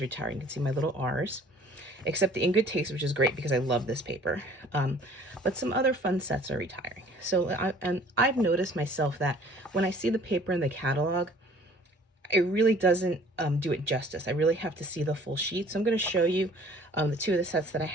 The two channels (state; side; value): normal; both; correlation 0.52